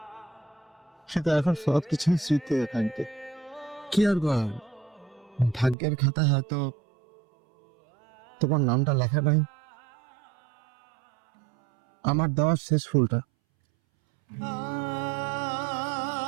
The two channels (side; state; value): left; drops out; at 5.8 s